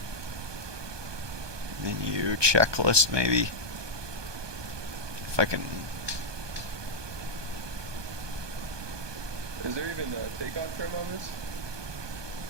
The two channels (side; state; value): left; late; 1.2 ms